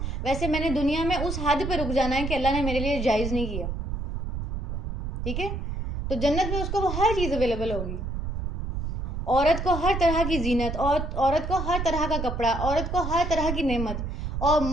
ویسے میں نے دنیا میں اس حد پہ رک جانا ہے کہ اللہ نے میرے لیے جائز نہیں کیا، ٹھیک ہے؟ تو جنت میں اس کو وہ ہر چیز اویلیبل ہوگی، عورت کو ہر طرح کی زینت، اور عورت کو ہر طرح کا کپڑا، عورت کو ہر طرح کی نعمت، اور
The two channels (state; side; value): noise; right; rumble, 3 dB below the sound